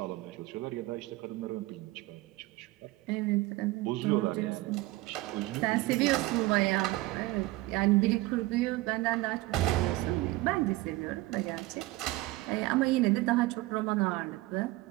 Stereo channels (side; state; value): left; quieter; 19.4 dB